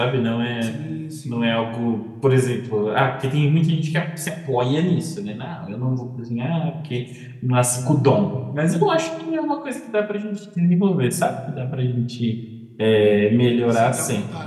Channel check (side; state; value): both; identical; correlation 1.00